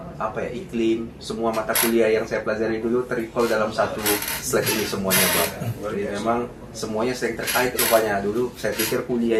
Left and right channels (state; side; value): identical; both; correlation 1.00